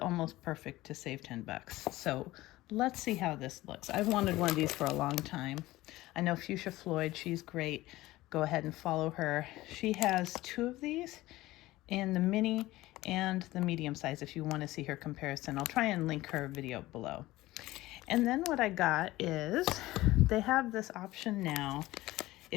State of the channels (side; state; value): right; quieter; 17.7 dB